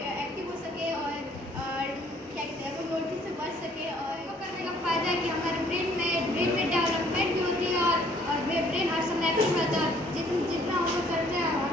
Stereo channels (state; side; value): normal; both; correlation 0.61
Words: हो सके और क्या कहते हैं नोटिस से बच सके। और वो करने का फ़ायदा है कि हमारे ब्रेन में डेवलपमेंट भी होती है और ब्रेन हर समय एक्टिव रहता है। जितना हम लोग करते हैं